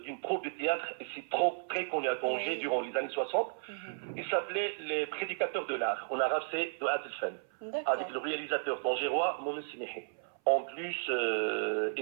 d'une troupe de théâtre, et c'est très connu à Tanger durant les années 60. Il s'appelait Les Prédicateurs de l'Art. En arabe, c'est de Adelfen, avec le réalisateur tangérois Mohamed Semihi. En plus,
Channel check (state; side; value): silent; left; 55 dB below the other